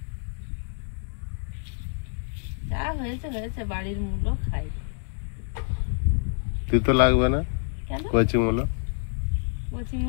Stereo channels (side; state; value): right; silent; 60 dB below the other